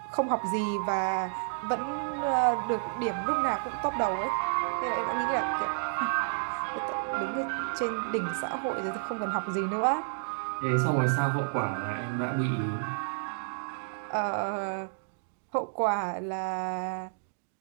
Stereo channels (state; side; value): silent; left; digital silence